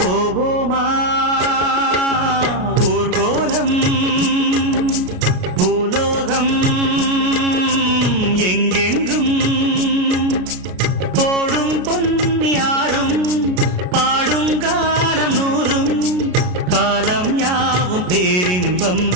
போவோமா ஊர்கோலம் பூலோகம் எங்கெங்கும் போடும் பொன்னியாரும் பாடும் காலம் நூறும் காலம் யாவும் பேரின்பம்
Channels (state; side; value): late; left; 33 ms